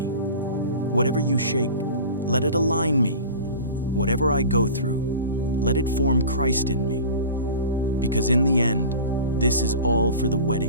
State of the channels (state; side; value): inverted; both; correlation -0.36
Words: Whatever you shake, let it align me. Whatever I go through, let it form Christ in me. Because in the end, this is all for the